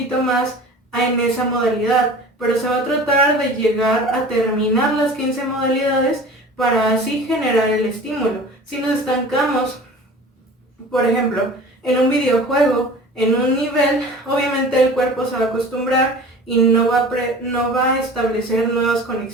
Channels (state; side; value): normal; both; correlation 0.40